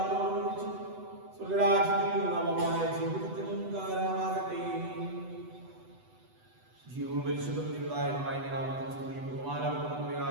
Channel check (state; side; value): late; left; 8.0 ms